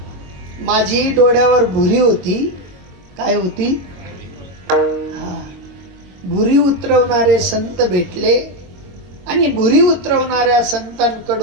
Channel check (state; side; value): late; left; 22 ms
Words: माझी डोळ्यावर भुरी होती. काय होती, भुरी उतरवणारे संत भेटले आणि भुरी उतरवणाऱ्या